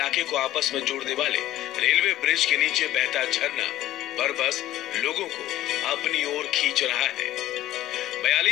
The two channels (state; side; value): quieter; right; 14.2 dB